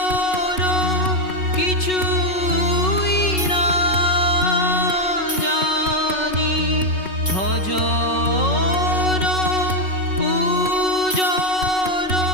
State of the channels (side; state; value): right; late; 5.4 ms